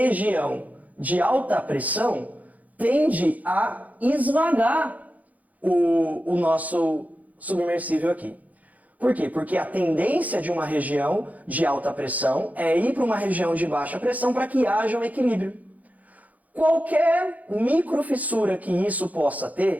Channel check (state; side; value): late; left; 0.077 ms